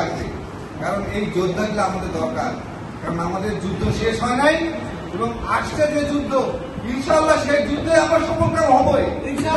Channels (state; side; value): identical; both; correlation 1.00